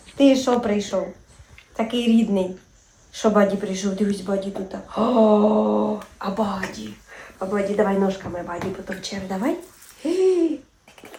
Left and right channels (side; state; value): both; identical; correlation 1.00